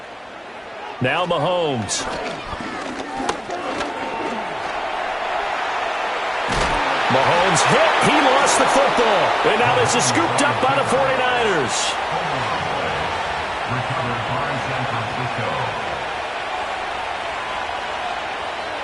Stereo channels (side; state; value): both; identical; correlation 1.00